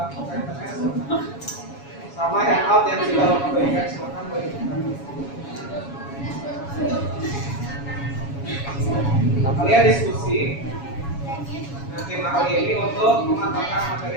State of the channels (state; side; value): late; right; 7.2 ms